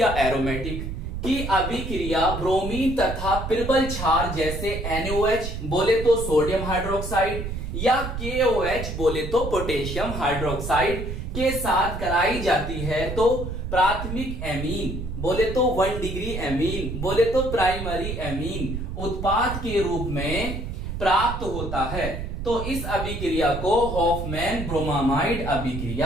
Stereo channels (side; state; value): right; noise; rumble, 5 dB below the sound